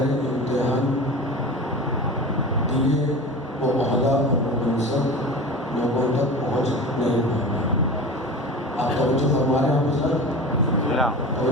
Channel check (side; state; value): both; normal; correlation 0.33